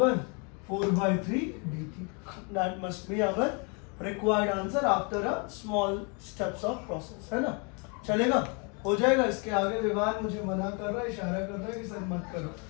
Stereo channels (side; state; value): right; quieter; 34.4 dB